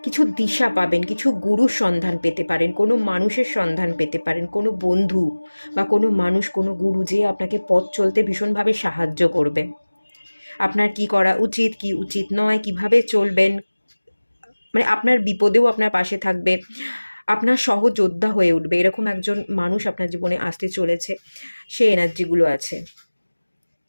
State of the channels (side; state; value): both; inverted; correlation -1.00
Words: কিছু দিশা পাবেন, কিছু গুরুর সন্ধান পেতে পারেন, কোনো মানুষের সন্ধান পেতে পারেন, কোনো বন্ধু বা কোনো মানুষ, কোনো গুরু যে আপনাকে পথ চলতে ভীষণভাবে সাহায্য করবে। আপনার কি করা উচিত, কি উচিত নয়, কিভাবে চলবেন, মানে আপনার বিপদেও আপনার পাশে থাকবে, আপনার সহযোদ্ধা হয়ে উঠবে, এরকম একজন মানুষ আপনার জীবনে আসতে চলেছে, সেই এনার্জিগুলো আছে।